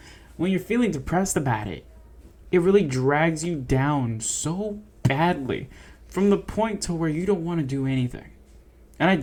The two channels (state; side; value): identical; both; correlation 1.00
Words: When you're feeling depressed about it, it really drags you down so badly from the point to where you don't want to do anything. And I